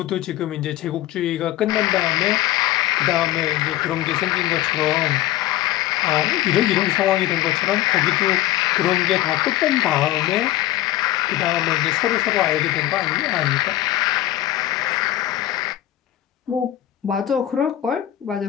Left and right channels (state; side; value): quieter; right; 14.0 dB